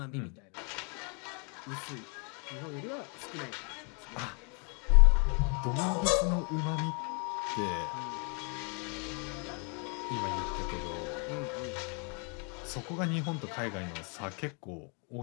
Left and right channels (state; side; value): quieter; right; 36.6 dB